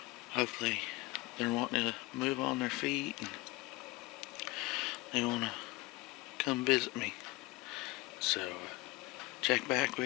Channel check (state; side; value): quieter; right; 21.2 dB